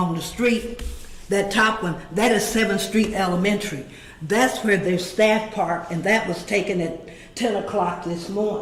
the street, that top one, that is 7th Street Elementary. That's where their staff park, and that was taken at 10 o'clock this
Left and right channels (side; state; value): both; identical; correlation 1.00